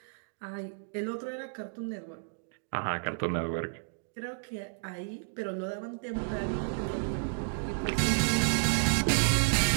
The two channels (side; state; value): left; silent; digital silence